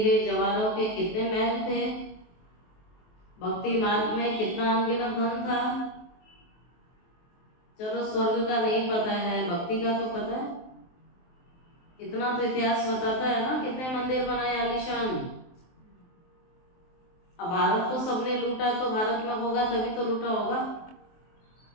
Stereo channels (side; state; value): right; late; 23 ms